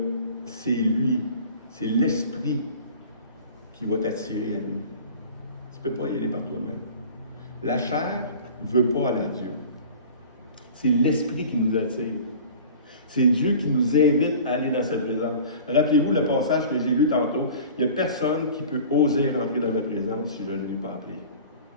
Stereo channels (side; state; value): both; inverted; correlation -0.42